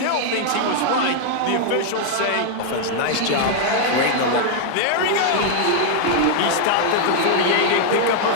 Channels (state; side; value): different; both; correlation 0.00